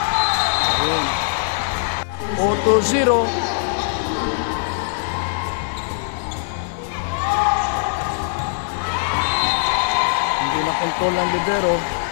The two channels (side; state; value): right; silent; digital silence